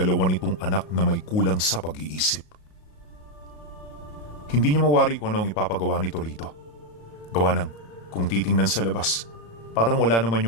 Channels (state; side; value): late; right; 37 ms